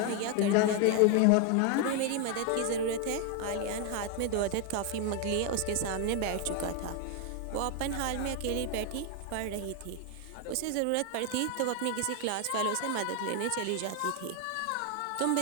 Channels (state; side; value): different; both; correlation 0.01